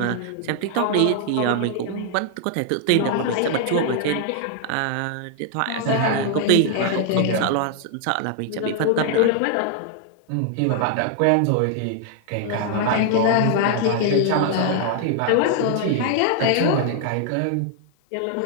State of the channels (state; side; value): different; both; correlation 0.00